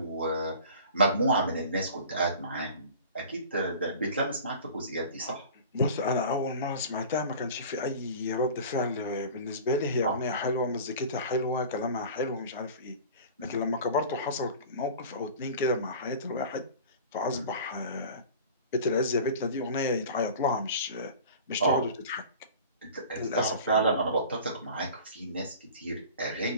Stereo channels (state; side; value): inverted; both; correlation -0.40